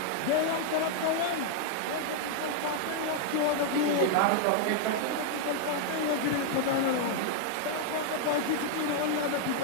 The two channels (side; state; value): both; different; correlation 0.00